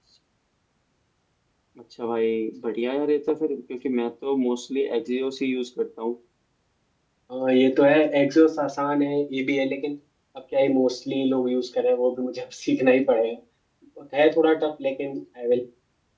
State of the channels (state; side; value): identical; both; correlation 1.00